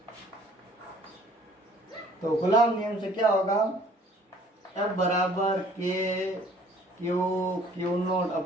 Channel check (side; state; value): both; normal; correlation 0.56